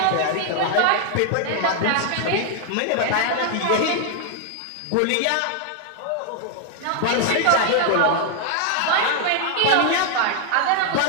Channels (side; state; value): both; different; correlation 0.00